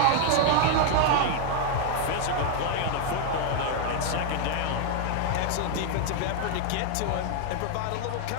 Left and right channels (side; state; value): both; different; correlation 0.00